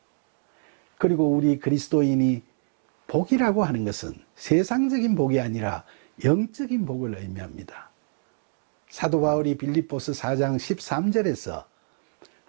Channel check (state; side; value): silent; left; digital silence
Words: 그리고 우리 그리스도인이 복이라고 하는 것은 세상적인 복이 아니라 영적인 복을 의미합니다. 사도 바울이 빌립보서 4장 13절에서